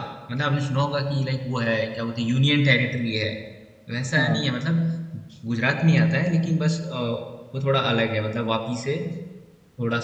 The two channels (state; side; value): identical; both; correlation 1.00